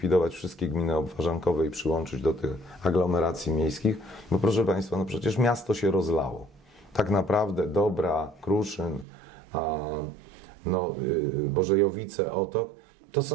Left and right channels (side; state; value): left; drops out; at 9.1 s